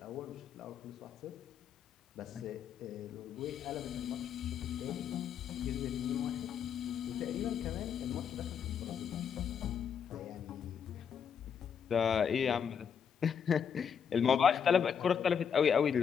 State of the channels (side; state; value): right; quieter; 7.4 dB